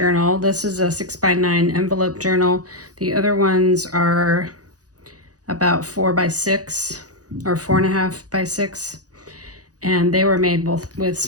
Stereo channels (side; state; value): left; late; 0.67 ms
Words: This is a 6 by 9 envelope journal. The other ones are about 4 by 6 or 4.5 by 6, and they were made both with